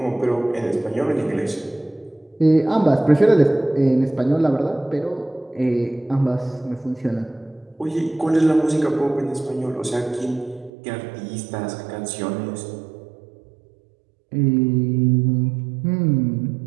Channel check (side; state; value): left; drops out; at 10.7 s